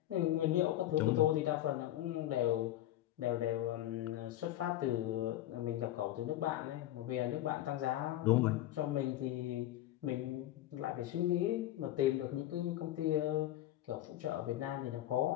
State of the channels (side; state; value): right; quieter; 13.8 dB